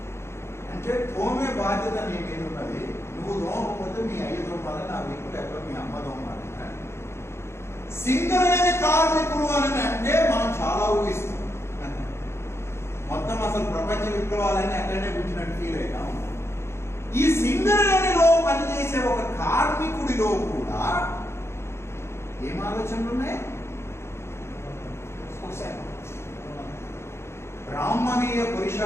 అంటే తోమే బాధ్యత నీ మీద ఉన్నది. నువ్వు తోమకపోతే మీ అయ్యతో ఉండాలి, నా వీపు లేకపోతే మీ అమ్మతో ఉండాలి. సింగరేణి కార్మికులు అని అంటే మనం చాలా ఊహిస్తాం. మొత్తం అసలు ప్రపంచ విప్లవాలని అక్కడనే కూర్చున్నట్టు ఫీల్ అయినా ఉంటాం. ఈ సింగరేణిలో పనిచేసే ఒక కార్మికుడిలో కూడా ఏం ఆలోచనలు ఉన్నాయి? బ్రాహ్మణీయ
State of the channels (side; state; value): right; late; 0.13 ms